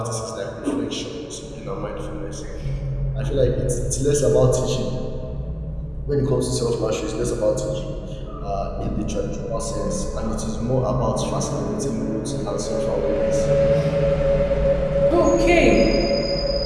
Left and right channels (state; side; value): identical; both; correlation 1.00